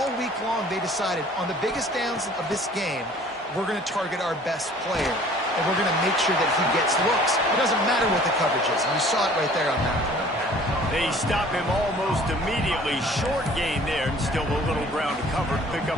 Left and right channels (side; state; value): both; normal; correlation 0.51